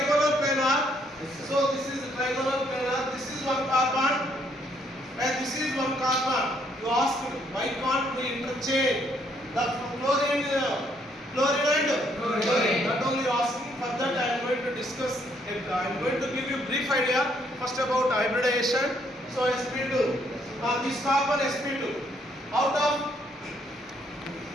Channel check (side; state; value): both; normal; correlation 0.70